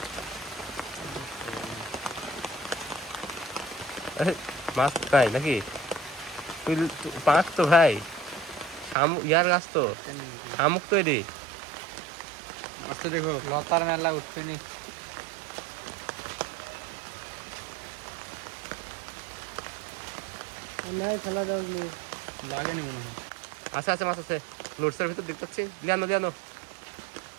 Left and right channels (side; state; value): left; drops out; at 9.0 s